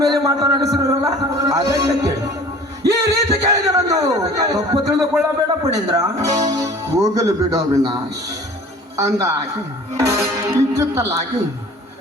ಮೇಲೆ ಮಾತನಾಡಿಸಿರಲ್ಲ, ಅದಕ್ಕೆ ಕೇಳಿ. ಈ ರೀತಿ ಕೇಳಿದರಂದು ತಪ್ಪು ತಿಳಿದುಕೊಳ್ಳಬೇಡ ಪಣೇಂದ್ರ. ಹೋಗಲು ಬಿಡು ಅವಿನಾಶ್. ಅಂದಾಗಿ ಇಚ್ಚಿತ್ತಲಾಗಿ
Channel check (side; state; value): both; normal; correlation 0.46